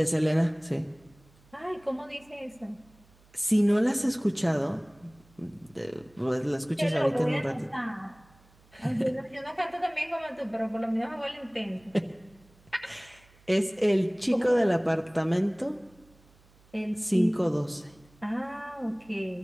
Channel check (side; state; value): right; noise; hum, 29 dB below the sound